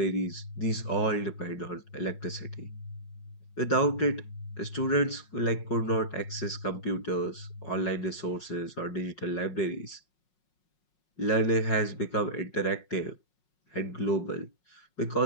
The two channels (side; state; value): right; late; 5.5 ms